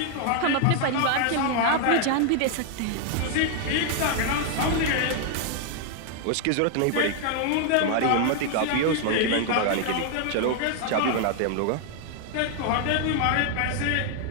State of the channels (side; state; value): both; different; correlation 0.00